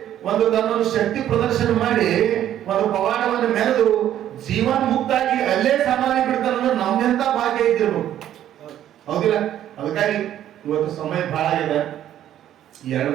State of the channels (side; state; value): left; quieter; 11.5 dB